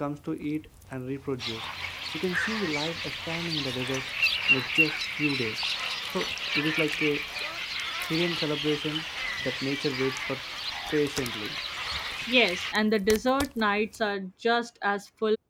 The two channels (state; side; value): identical; both; correlation 1.00